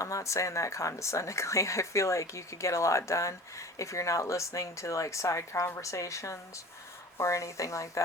not saying that condescendingly. I feel like you could get a lot done if you're not listening to like side conversations or anything like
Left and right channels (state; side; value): normal; both; correlation 0.39